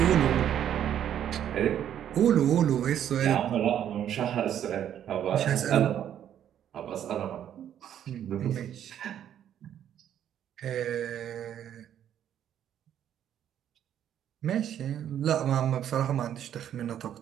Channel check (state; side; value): quieter; left; 10.2 dB